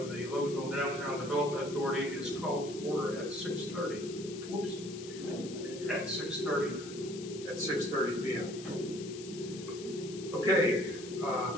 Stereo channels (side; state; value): left; noise; hiss, 14 dB below the sound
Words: the Loganville Downtown Development Authority is called to order at 6:30. Whoops. At 6:30 p.m. Okay,